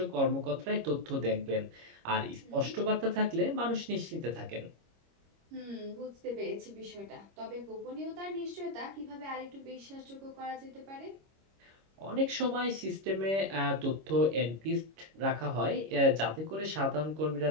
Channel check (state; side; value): late; left; 26 ms